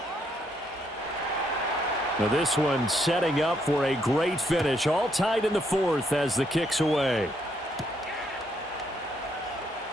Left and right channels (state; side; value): normal; both; correlation 0.74